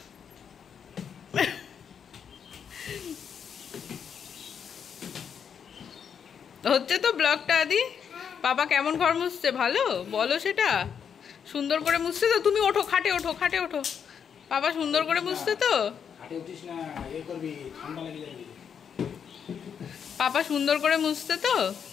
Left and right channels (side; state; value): right; quieter; 7.5 dB